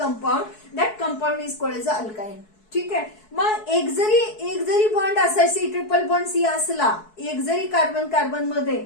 that compound is called as alkyne. ठीक आहे. मग एक जरी बॉन्ड असा सी ट्रिपल बॉन्ड सी असला, एक जरी कार्बन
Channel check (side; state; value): right; late; 4.7 ms